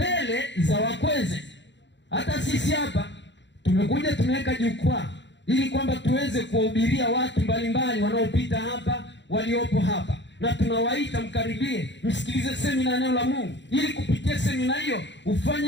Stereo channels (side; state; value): right; late; 0.52 ms